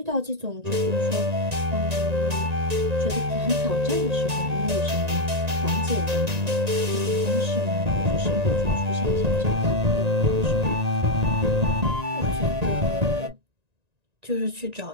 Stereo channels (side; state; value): left; late; 1.9 ms